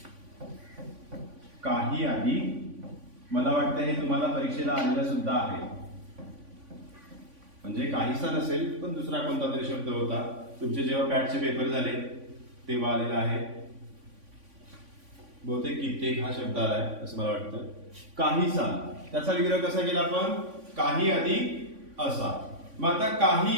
काही आधी, मला वाटतं हे तुम्हाला परीक्षेला आलेला सुद्धा आहे. म्हणजे काहीसा नसेल पण दुसरा कोणता तरी शब्द होता, तुमचे जेव्हा पॅटचे पेपर झाले तेव्हा आलेला आहे. बहुतेक कित्येक हा शब्द आलाय असं मला वाटतं. काहीसा, त्याचा विग्रह कसा केला आपण? काही अधिक असा. मग आता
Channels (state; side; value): late; left; 3.5 ms